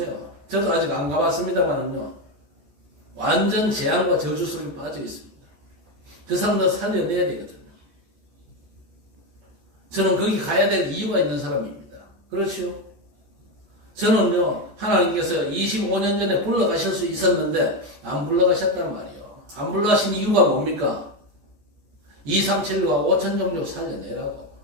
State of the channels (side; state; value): left; late; 14 ms